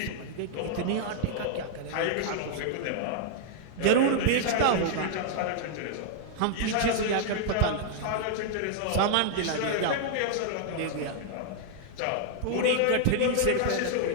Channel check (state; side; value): different; both; correlation -0.01